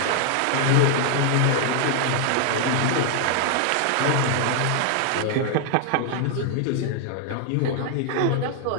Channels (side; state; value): both; different; correlation 0.00